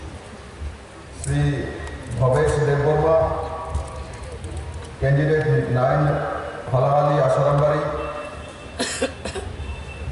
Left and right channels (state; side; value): identical; both; correlation 1.00